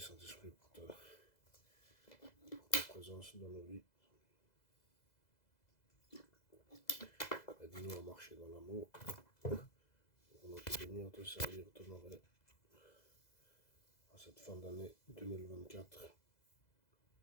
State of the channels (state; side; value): late; right; 2.0 ms